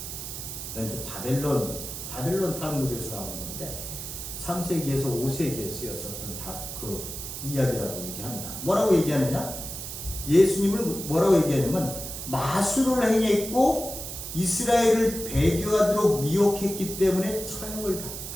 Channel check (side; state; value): right; noise; hiss, 8 dB below the sound